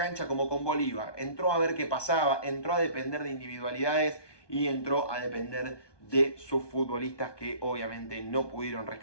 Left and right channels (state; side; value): late; right; 1.2 ms